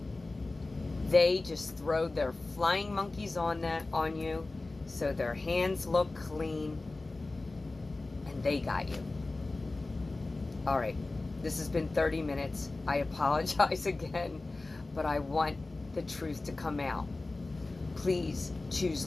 They just throw their flying monkeys on you so their hands look clean and they got you. All right, this has been 30 minutes. I apologize again, but I want the truth to come out. Please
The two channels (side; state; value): right; quieter; 3.2 dB